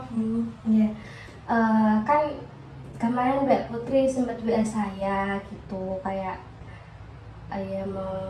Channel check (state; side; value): identical; both; correlation 1.00